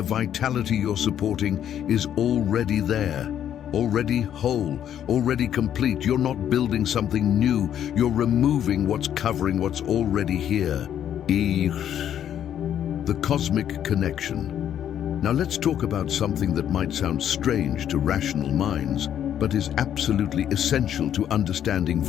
vitality you're supporting is already there, already whole, already complete. You're not building something new. You're removing what's covering what's already here. The cosmic connection. Now let's talk about something that might sound strange to rational minds, but is absolutely essential to understanding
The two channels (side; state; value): right; quieter; 10.0 dB